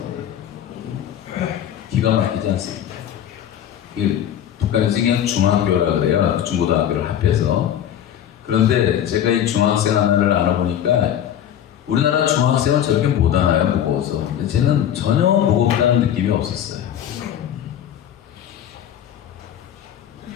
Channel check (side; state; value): right; quieter; 10.3 dB